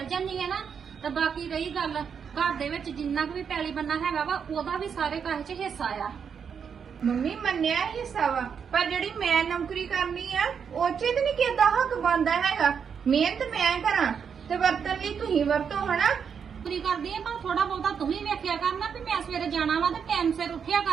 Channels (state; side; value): quieter; left; 6.9 dB